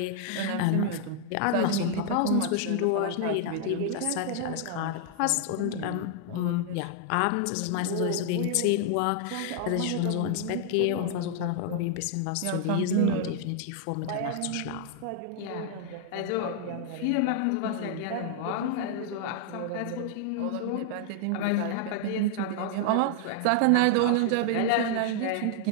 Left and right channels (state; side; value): different; both; correlation 0.00